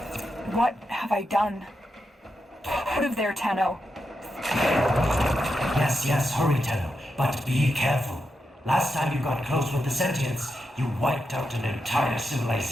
What have I done? Put of their Tenno. Yes, hurry, Tenno, but be careful. Last time you got close with the sentients, you wiped out an entire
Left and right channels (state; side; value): normal; both; correlation 0.86